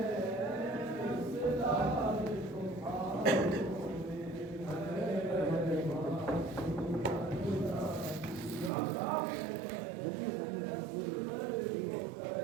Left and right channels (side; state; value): left; drops out; at 8.7 s